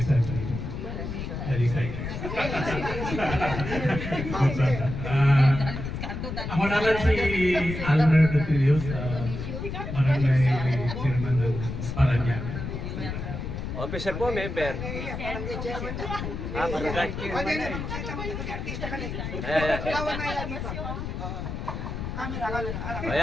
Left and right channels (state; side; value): noise; left; rumble, 5 dB below the sound